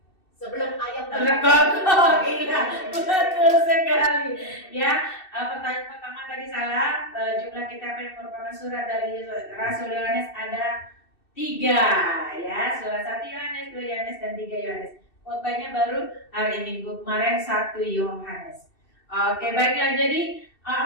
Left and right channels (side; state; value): right; late; 2.6 ms